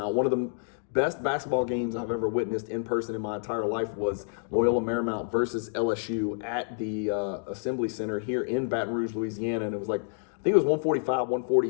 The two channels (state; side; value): silent; right; digital silence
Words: one of the best basketball games I've ever witnessed in person in my entire life was Loyola Marymount versus LSU at the Assembly Center here in Baton Rouge, Louisiana. And it was like, I think it was 145,